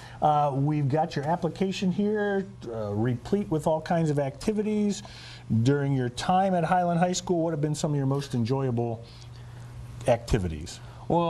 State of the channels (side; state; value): both; identical; correlation 1.00